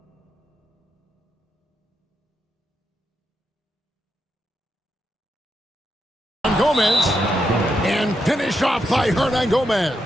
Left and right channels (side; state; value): both; normal; correlation 0.83